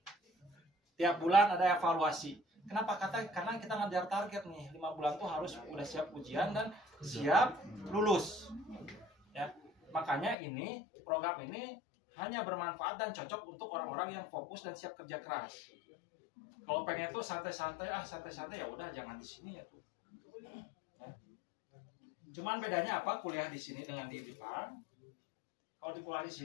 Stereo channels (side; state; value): right; drops out; at 10.4 s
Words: Tiap bulan ada evaluasi. Kenapa? Karena kita ngejar target nih, 5 bulan tuh harus udah siap ujian dan siap lulus. Ya. Makanya program ini hanya bermanfaat dan cocok untuk orang-orang yang fokus dan siap kerja keras. Kalau pengen tuh santai-santai ya udah jangan di sini ya tuh. Ya. Cuman bedanya apa kuliah di sini dengan di Jepang? Kalau di kuliah di